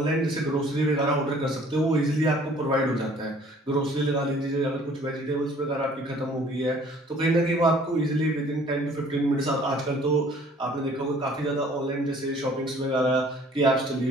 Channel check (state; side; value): normal; both; correlation 0.55